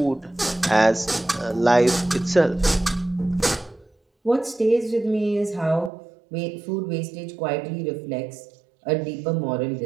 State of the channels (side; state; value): left; drops out; at 5.9 s